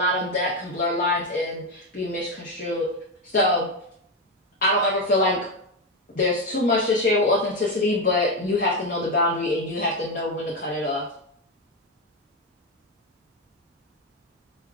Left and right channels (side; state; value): both; normal; correlation 0.11